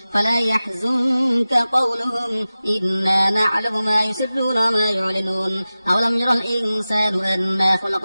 فلا يحزنك قولهم إنا نعلم ما يسرون وما يعلنون أولم يرى الإنسان أنا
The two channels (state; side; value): inverted; both; correlation -0.96